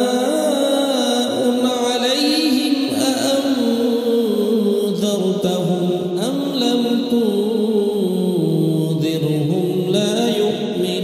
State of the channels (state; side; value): identical; both; correlation 1.00